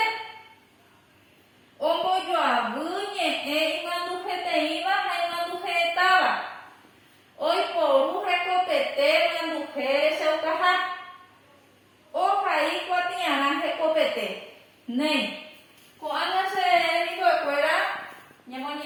ombo yo abuñe imandu te iba imandu estaba hoy por recopete imandu se ucaja o ahí cuatiana recopete ne cuando se dijo fuera ñemo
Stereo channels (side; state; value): both; identical; correlation 1.00